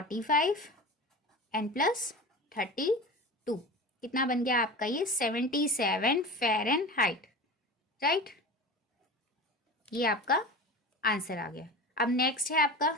एंड प्लस 32, कितना बन गया आपका ये 77 फ़ारेनहाइट, राइट। ये आपका आंसर आ गया। अब नेक्स्ट है आपका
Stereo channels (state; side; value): normal; both; correlation 0.31